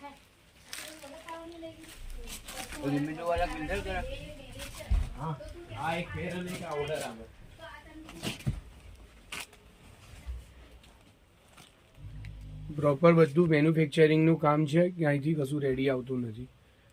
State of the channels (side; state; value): both; identical; correlation 1.00